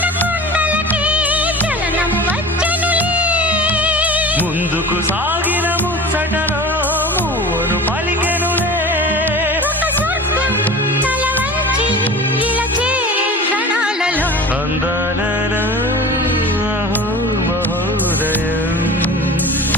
కుండలకే చలనం వచ్చనులే ముందుకు సాగిన ముచ్చటలో మూవను పలికెనులే ఒక స్వర్గం తల వంచి ఇలా చేరే క్షణాలలో అందాలలో అహో మహోదయం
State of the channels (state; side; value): normal; both; correlation 0.36